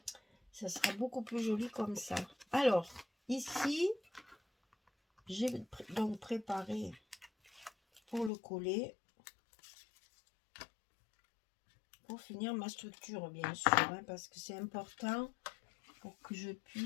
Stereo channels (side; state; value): right; drops out; at 8.3 s